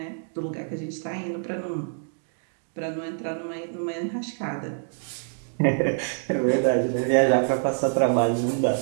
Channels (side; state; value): left; silent; digital silence